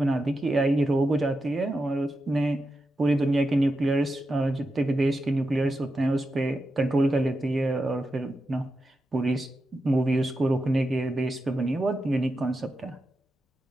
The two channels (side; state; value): both; normal; correlation 0.89